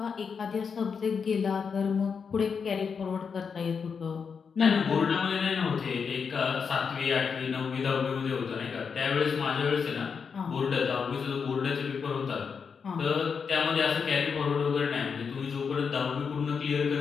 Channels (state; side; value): quieter; right; 6.0 dB